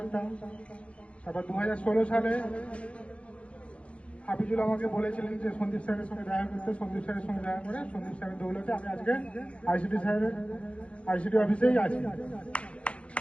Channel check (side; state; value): right; late; 0.061 ms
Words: তারপর 2016 সালে হাফিজুল আমাকে বলেছিলেন যে সন্দীপ স্যারের সঙ্গে দেখা করতে। সন্দীপ স্যারের সঙ্গে দেখা করে সন্দীপ স্যারের দৌলতে আমি আজকে আইসিটি অফিসেই আছি।